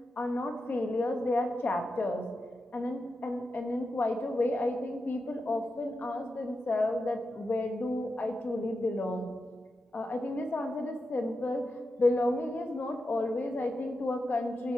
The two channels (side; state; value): both; normal; correlation 0.88